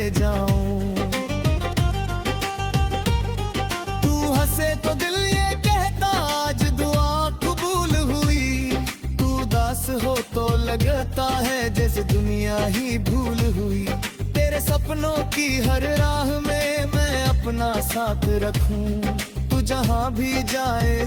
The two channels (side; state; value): both; identical; correlation 1.00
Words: जाऊं। तू हंसे तो दिल ये कहता आज दुआ कबूल हुई। तू उदास हो तो लगता है जैसे दुनिया ही भूल हुई। तेरे सपनों की हर राह में मैं अपना साथ रखूं। तू जहां भी जाए